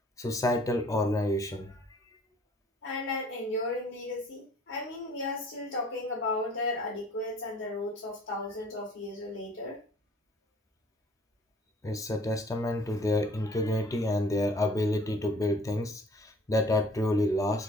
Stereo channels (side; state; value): both; normal; correlation 0.54